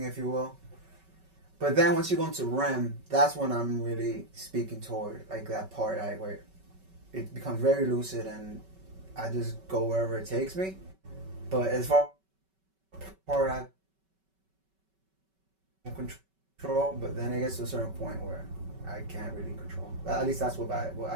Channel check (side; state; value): left; late; 5.2 ms